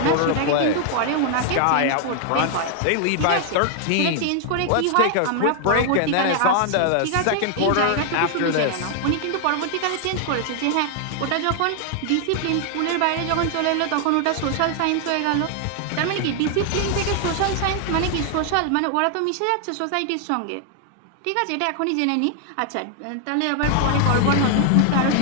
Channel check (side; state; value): both; different; correlation 0.00